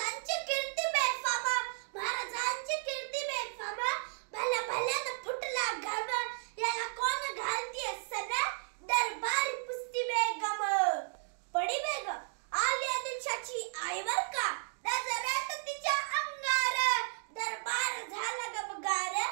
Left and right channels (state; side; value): silent; left; digital silence